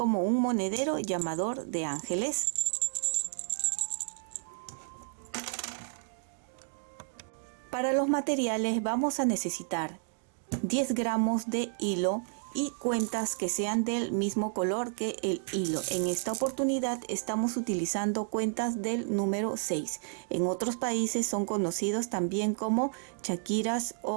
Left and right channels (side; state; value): left; silent; digital silence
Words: un monedero llamador de ángeles. Para los materiales vamos a necesitar 10 gramos de hilo y cuentas que sean del mismo color que el hilo. En esta oportunidad estamos utilizando cuentas del número 6. En otros países son conocidos también como chaquiras